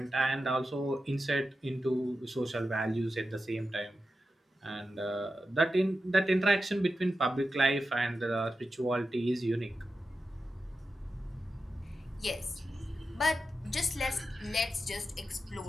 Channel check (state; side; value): normal; both; correlation 0.91